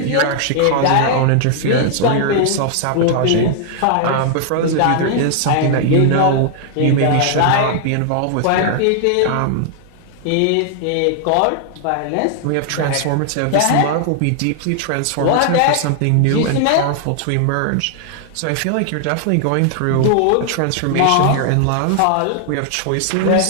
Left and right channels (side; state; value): both; different; correlation 0.00